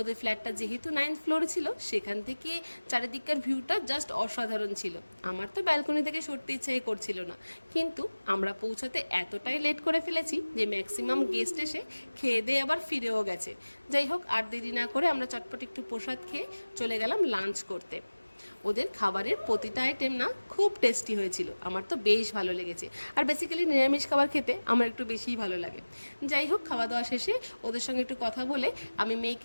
ফ্ল্যাটটা যেহেতু 9th ফ্লোরে ছিল, সেখান থেকে চারিদিককার ভিউটা জাস্ট অসাধারণ ছিল। আমার তো ব্যালকনি থেকে সরতে ইচ্ছাই করছিল না, কিন্তু আমরা পৌঁছাতে এতটাই লেট করে ফেলেছি যে ম্যাক্সিমাম গেস্ট এসে খেয়ে দিয়ে আবার ফিরেও গেছে। যাই হোক, আর দেরি না করে আমরা চটপট একটু প্রসাদ খেয়ে চলে গেলাম লাঞ্চ করতে। ওদের খাবারের প্রতিটা আইটেম না খুব টেস্টি হয়েছিল, আমার তো বেশ ভালো লেগেছে। আর বেসিক্যালি নিরামিষ খাবার খেতে আমার একটু বেশিই ভালো লাগে। যাই হোক, খাওয়া দাওয়া শেষে ওদের সঙ্গে একটু কথা বলে আমি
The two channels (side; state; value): both; inverted; correlation -1.00